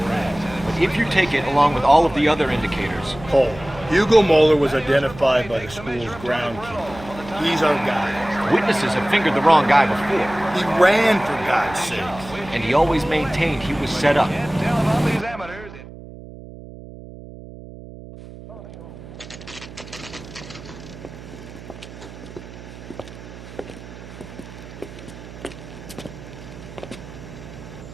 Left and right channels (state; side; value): noise; right; hum, 15 dB below the sound